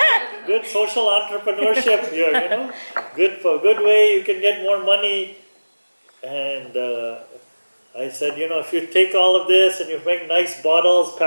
good social entrepreneurship here, good way you can get more money. And I said, if you take all of this and you make nice bottles,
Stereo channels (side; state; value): both; inverted; correlation -1.00